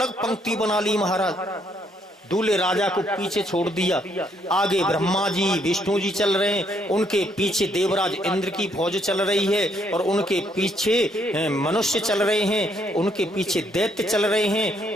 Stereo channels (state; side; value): normal; both; correlation 0.71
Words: पंक्ति बना ली महाराज, दूल्हे राजा को पीछे छोड़ दिया। आगे ब्रह्मा जी विष्णु जी चल रहे हैं, उनके पीछे देवराज इंद्र की फौज चल रही है, और उनके पीछे मनुष्य चल रहे हैं, उनके पीछे दैत्य चल रहे